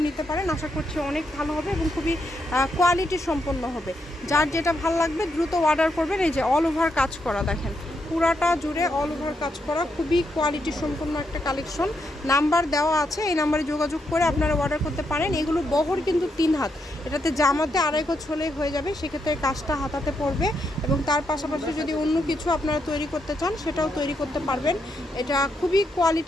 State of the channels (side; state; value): both; normal; correlation 0.80